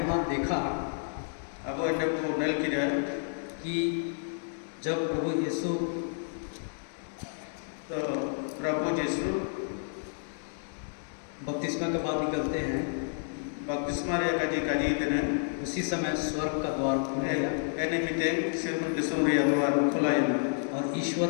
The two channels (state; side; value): silent; right; 58 dB below the other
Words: देखा अब इन्हें को नल की कि जब प्रभु यीशु तो प्रभु यीशु बपतिस्मा के बाद निकलते हैं, बपतिस्मा रे काजी देने उसी समय स्वर्ग का द्वार खुल गया एने मिते सिर्फ दिसुम रे द्वार खुला है और ईश्वर